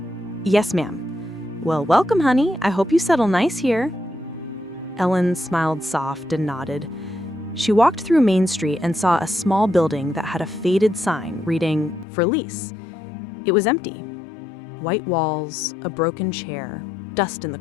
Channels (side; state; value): right; drops out; at 12.1 s